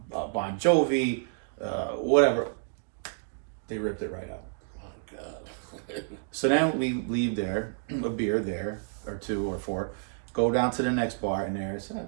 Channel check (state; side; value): silent; left; digital silence